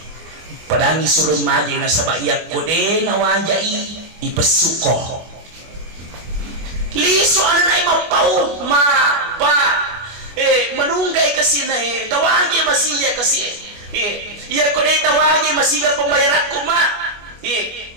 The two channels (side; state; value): left; late; 24 ms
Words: Padangi suruh maji na sabaya kode na wajah ipesuko. Liso anak ay mapau ma pa menunggai kesini tawagi masih ya kasi ya kode tawagi masih ya pembayaran kuma